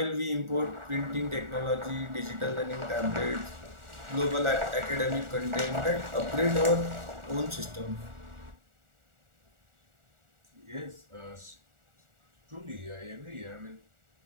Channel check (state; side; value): late; left; 1.4 ms